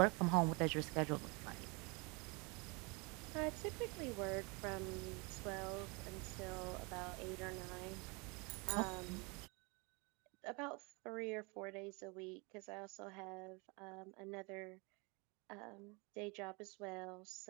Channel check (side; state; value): left; quieter; 29.6 dB